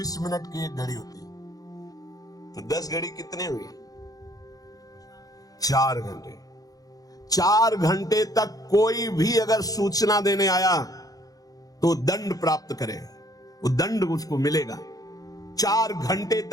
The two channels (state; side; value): late; right; 0.18 ms